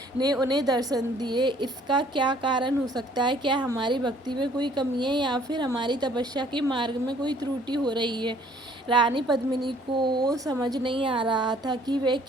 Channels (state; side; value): normal; both; correlation 0.59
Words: ने उन्हें दर्शन दिए। इसका क्या कारण हो सकता है? क्या हमारी भक्ति में कोई कमी है या फिर हमारी तपस्या के मार्ग में कोई त्रुटि हो रही है? रानी पद्मिनी को समझ नहीं आ रहा था कि वे